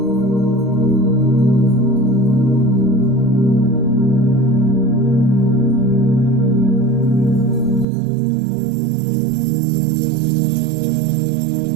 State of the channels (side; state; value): left; drops out; at 7.9 s